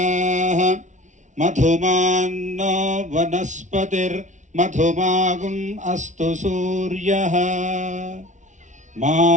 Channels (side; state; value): left; late; 0.36 ms